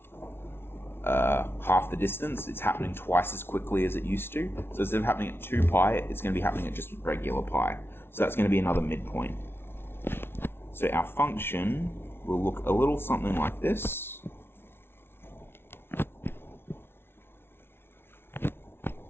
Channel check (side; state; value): right; late; 0.11 ms